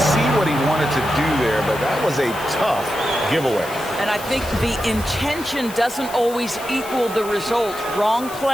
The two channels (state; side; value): noise; left; hiss, 15 dB below the sound